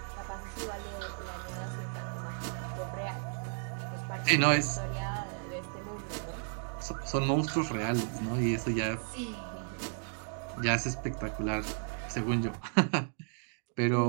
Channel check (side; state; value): left; silent; 55 dB below the other